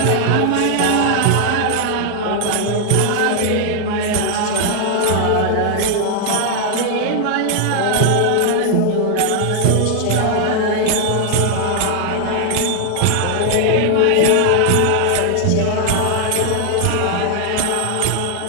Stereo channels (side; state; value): both; different; correlation 0.00